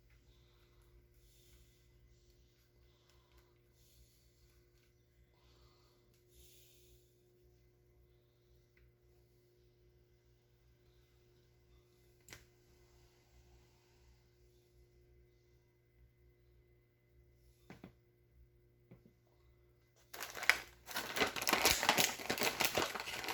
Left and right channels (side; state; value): both; identical; correlation 1.00